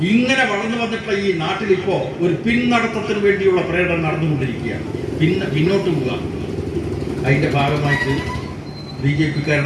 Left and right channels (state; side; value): identical; both; correlation 1.00